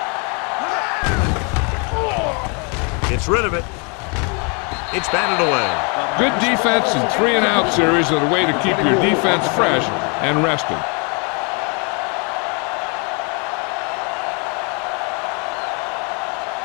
go. Gets rid of it. It's batted away. Good defense and 3-and-out series are the way to keep your defense fresh and rested.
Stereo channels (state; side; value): quieter; right; 34.6 dB